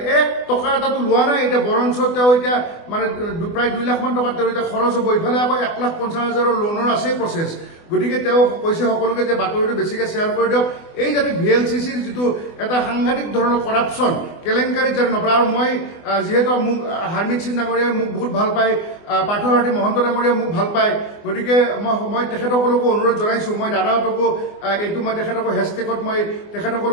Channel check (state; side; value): late; right; 24 ms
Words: 1 টকা এটাতো লোৱা নাই এতিয়া বৰঞ্চ তেওঁ এতিয়া মানে প্ৰায় 2 লাখ মান টকা তেওঁ এতিয়া খৰচ হ'ব ইফালে আকৌ 1,50,000 লোনৰ আছে প্ৰচেছ গতিকে তেওঁ কৈছে সকলোকে যে বাতৰিটো বেছিকৈ শ্বেয়াৰ কৰি দিয়ক এই যাতে ভিএলচিচিৰ যিটো এটা সাংঘাতিক ধৰণৰ কৰাপশ্যন কেলেংকাৰীত যাতে নপৰে আৰু মই যিহেতু মোক হাৰ্মিত সিং ডাঙৰীয়াই মোক বহুত ভাল পায় পাৰ্থসাৰথী মহন্ত ডাঙৰীয়াই মোক ভাল পায় গতিকে মই তেখেতসকলকো অনুৰোধ জনাইছোঁ মই দাদাহঁতকো এইটো মই তেখেতকো হেছটেগত মই